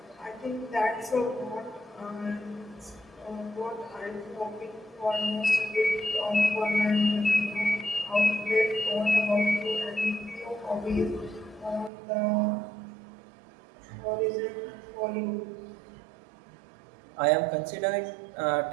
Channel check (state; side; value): drops out; left; at 11.9 s